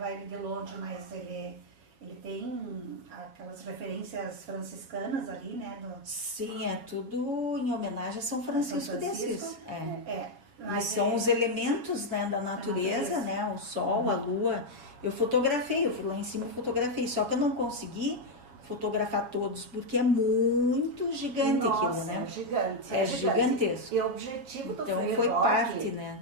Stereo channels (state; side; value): late; left; 6.8 ms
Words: ele de longe, mas ele tem aquelas referências franciscanas ali, né? Sim, é tudo em homenagem a São Francisco de Assis. Mas são os elementos, né, da natureza, natureza. né? O sol, a lua. Eu fotografei, eu fui lá em cima e fotografei, só que eu não consegui fotografar todos, porque é muito gigante aquilo, né? É gigante. É gigantesco. E o objetivo do Então Frei foi Roque, parte, né?